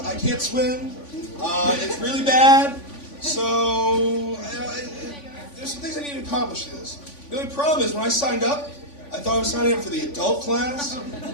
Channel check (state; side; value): late; right; 3.5 ms